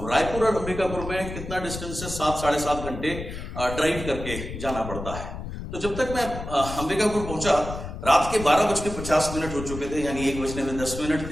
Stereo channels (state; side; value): noise; left; rumble, 9 dB below the sound